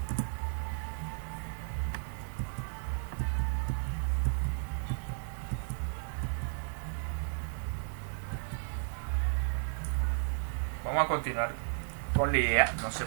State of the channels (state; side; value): silent; left; digital silence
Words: Vamos a continuar con la idea. No sé